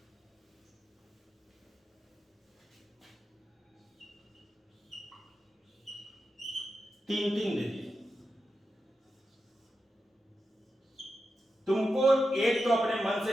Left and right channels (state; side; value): normal; both; correlation 0.90